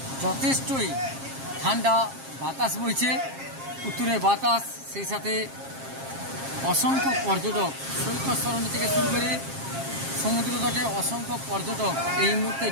যথেষ্টই ঠান্ডা বাতাস বইছে, উত্তরে বাতাস। সেই সাথে অসংখ্য পর্যটক সৈকত সরণি থেকে শুরু করে সমুদ্র তটে অসংখ্য পর্যটক এই মুহূর্তে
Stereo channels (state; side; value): late; left; 7.4 ms